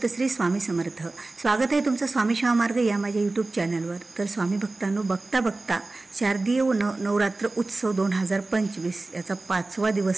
श्री स्वामी समर्थ। स्वागत आहे तुमचं स्वामी शिवा मार्ग या माझ्या यूट्यूब चॅनलवर। तर स्वामी भक्तांनो, बघता बघता शारदीय नवरात्र उत्सव 2025 याचा 5वा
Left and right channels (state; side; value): quieter; left; 3.2 dB